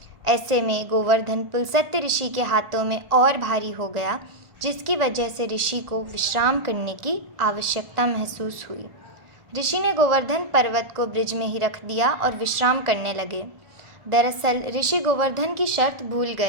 ऐसे में गोवर्धन पुलस्त्य ऋषि के हाथों में और भारी हो गया, जिसकी वजह से ऋषि को विश्राम करने की आवश्यकता महसूस हुई। ऋषि ने गोवर्धन पर्वत को ब्रिज में ही रख दिया और विश्राम करने लगे। दरअसल ऋषि गोवर्धन की शर्त भूल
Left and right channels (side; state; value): left; late; 1.4 ms